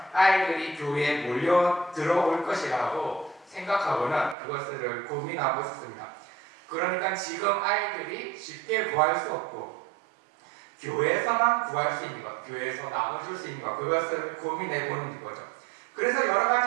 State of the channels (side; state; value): left; drops out; at 4.4 s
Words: 아이들이 교회에 몰려 들어올 것이라고 생각하고는 그것을 고민하고 있습니다. 그러니까 지금 아이들이 쉽게 구할 수 없고 교회에서만 구할 수 있는 것, 교회에서 나눠줄 수 있는 것 그것을 고민해 보는 거죠. 그래서 여러